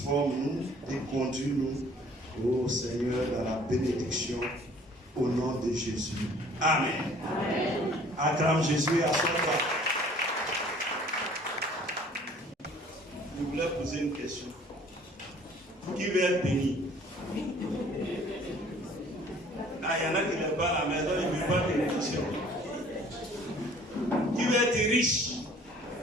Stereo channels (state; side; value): normal; both; correlation 0.54